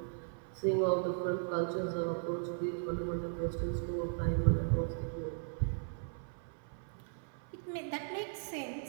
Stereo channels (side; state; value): left; silent; 53 dB below the other